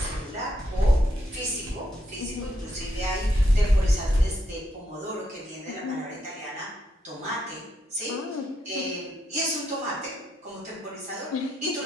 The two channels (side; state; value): both; normal; correlation 0.78